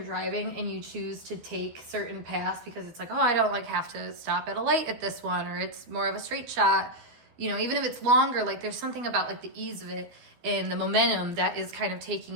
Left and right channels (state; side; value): late; left; 12 ms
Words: driving and you choose to take certain paths because it's I don't have to stop at a light at this one, or it's more of a straight shot. Even if it's longer, there's something about the ease of it and the momentum that is kind of taking